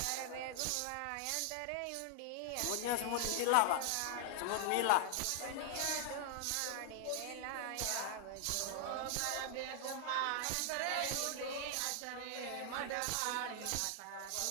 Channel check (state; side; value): different; both; correlation 0.00